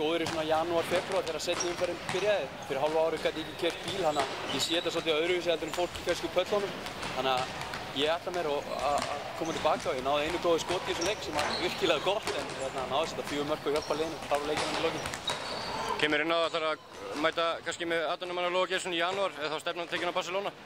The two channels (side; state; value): both; identical; correlation 1.00